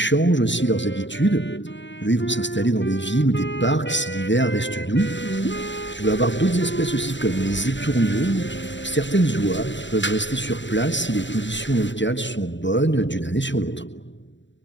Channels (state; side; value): late; right; 0.53 ms